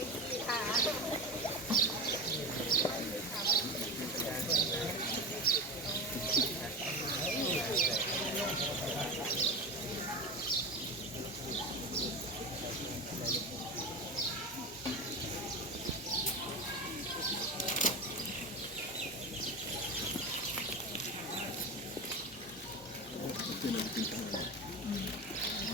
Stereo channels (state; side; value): normal; both; correlation 0.23